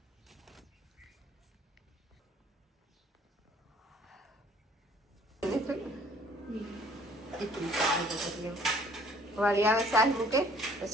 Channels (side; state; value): both; normal; correlation 0.57